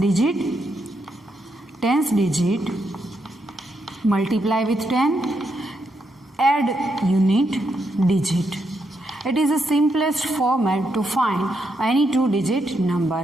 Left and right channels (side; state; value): both; normal; correlation 0.80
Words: multiply with 10, add unit digit. It is the simplest format to find any two-digit